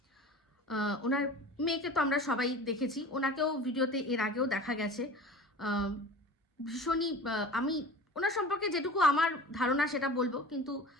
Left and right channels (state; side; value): normal; both; correlation 0.38